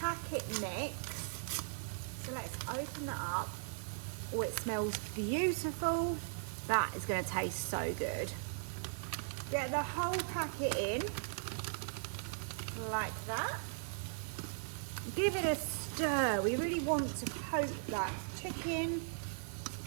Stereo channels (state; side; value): silent; left; digital silence